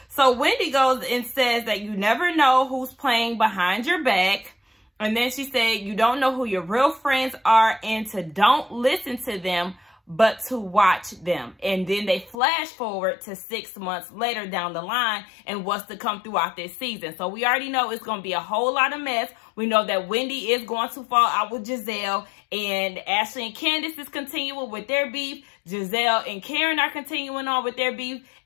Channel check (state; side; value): drops out; right; at 12.4 s